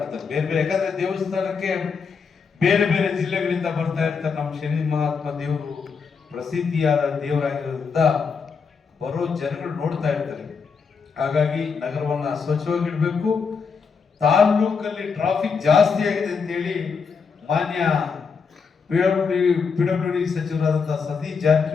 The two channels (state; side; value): quieter; right; 5.6 dB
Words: ಬೇರೆ ಬೇರೆ. ಯಾಕಂದ್ರೆ ದೇವಸ್ಥಾನಕ್ಕೆ ಬೇರೆ ಬೇರೆ ಜಿಲ್ಲೆಗಳಿಂದ ಬರ್ತಾ ಇರ್ತಾರೆ. ನಮ್ಮ ಶನಿ ಮಹಾತ್ಮ ದೇವರು ಪ್ರಸಿದ್ಧಿಯಾದ ದೇವರಾಗಿರೋದ್ರಿಂದ ಬರೋ ಜನಗಳು ನೋಡ್ತಾ ಇರ್ತಾರೆ. ಹಾಗಾಗಿ ನಗರವನ್ನ ಸ್ವಚ್ಛವಾಗಿಡ್ಬೇಕು. ತಾಲ್ಲೂಕಲ್ಲಿ ಟ್ರಾಫಿಕ್ ಜಾಸ್ತಿ ಆಗಿದೆ ಅಂತೇಳಿ ಮಾನ್ಯ PWD ಸಚಿವರಾದಂತಹ ಸತೀಶ್